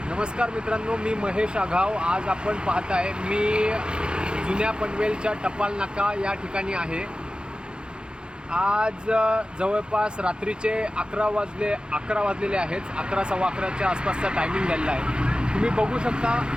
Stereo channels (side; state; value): left; late; 0.049 ms